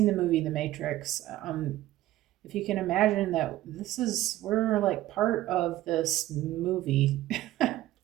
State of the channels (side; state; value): left; quieter; 15.1 dB